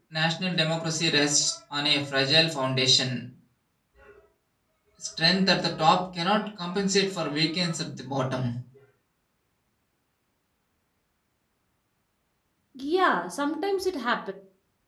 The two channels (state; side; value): identical; both; correlation 1.00